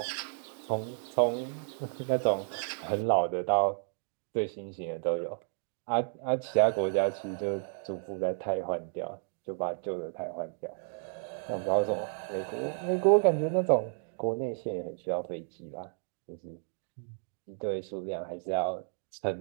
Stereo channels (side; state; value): left; silent; 56 dB below the other